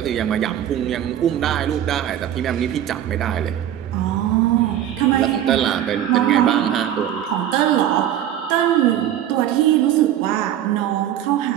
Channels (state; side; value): quieter; left; 11.1 dB